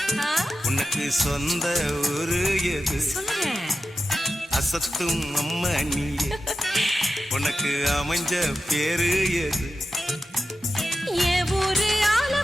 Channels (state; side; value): normal; both; correlation 0.92